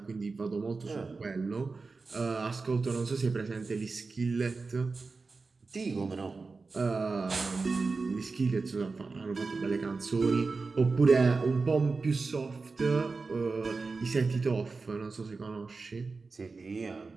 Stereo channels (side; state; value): left; quieter; 4.1 dB